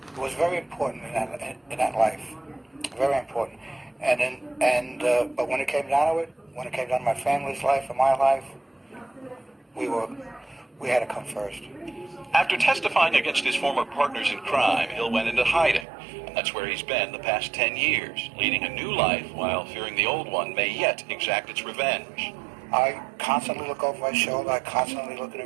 It was very important in that life. Very important. But when it came down to it, when it came down to my family's life and my life, we had to come first. After testifying against his former partners in crime, Hill went into hiding. And that's where he's been the past 10 years, leading a new life while fearing the old one may yet exact its revenge. I constantly look over my shoulder. I constantly look in the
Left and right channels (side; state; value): left; drops out; at 15.9 s